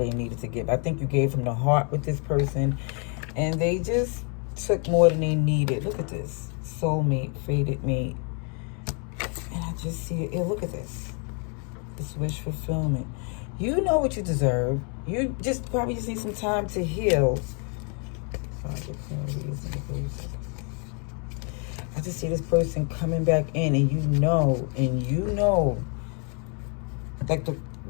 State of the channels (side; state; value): right; quieter; 38.7 dB